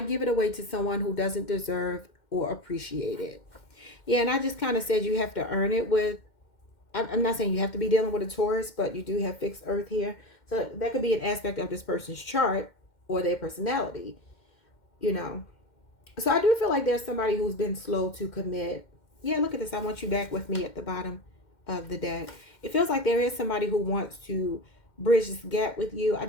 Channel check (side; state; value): right; late; 2.1 ms